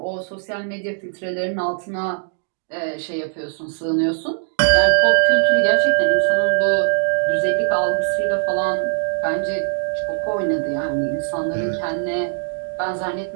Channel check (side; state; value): left; silent; 63 dB below the other